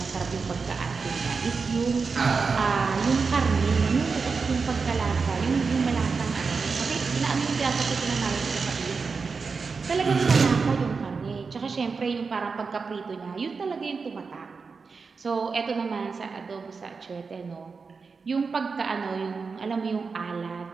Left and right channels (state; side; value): quieter; left; 4.9 dB